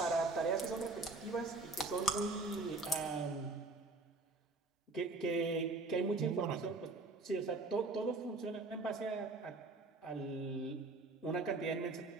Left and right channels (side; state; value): left; quieter; 3.2 dB